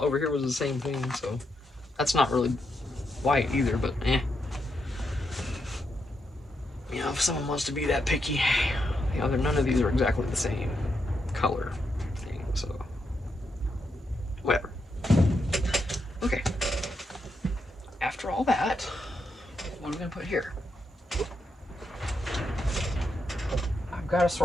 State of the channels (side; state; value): both; normal; correlation 0.82